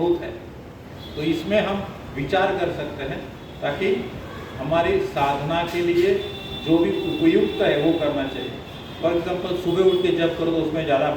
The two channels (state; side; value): identical; both; correlation 1.00